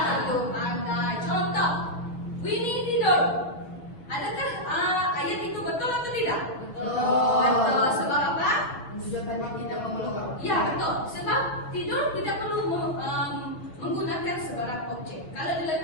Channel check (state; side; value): late; right; 6.5 ms